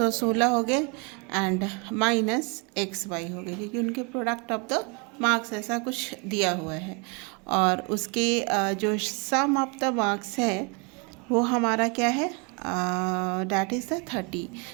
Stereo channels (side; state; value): left; quieter; 32.7 dB